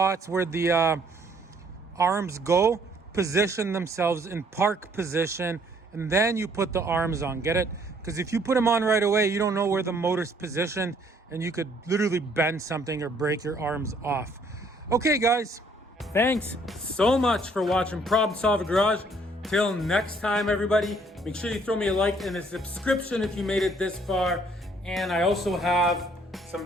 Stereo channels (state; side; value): normal; both; correlation 0.63